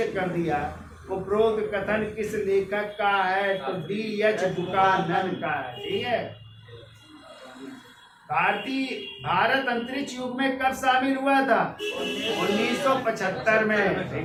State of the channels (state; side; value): identical; both; correlation 1.00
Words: कर दिया। उपरोक्त कथन किस लेखक का है? तो D.H. बुकानन का है, ठीक है। भारत अंतरिक्ष युग में कब शामिल हुआ था? 1975 में,